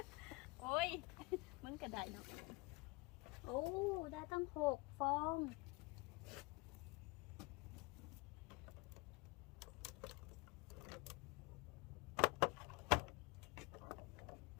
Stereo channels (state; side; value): quieter; right; 26.1 dB